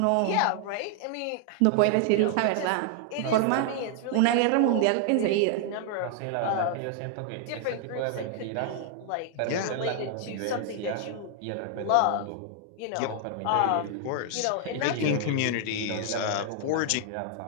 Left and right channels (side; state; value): both; different; correlation 0.00